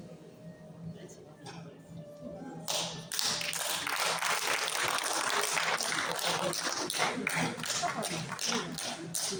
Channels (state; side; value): identical; both; correlation 1.00